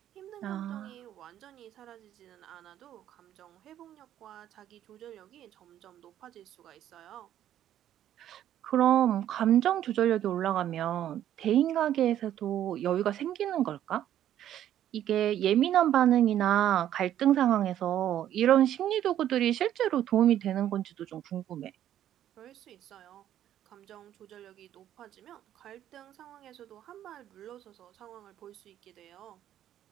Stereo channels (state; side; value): quieter; left; 11.4 dB